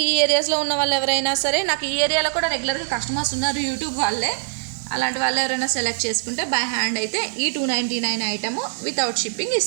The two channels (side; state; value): left; silent; digital silence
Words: ఈ ఏరియాస్లో ఉన్న వాళ్ళు ఎవరైనా సరే, నాకు ఈ ఏరియాలో కూడా రెగ్యులర్గా కస్టమర్స్ ఉన్నారు యూట్యూబ్ వాళ్ళే, అలాంటి వాళ్ళు ఎవరైనా సెలెక్ట్ చేసుకుంటే బై హ్యాండ్ అయితే ఈ 299 ఐటము వితౌట్ షిప్పింగ్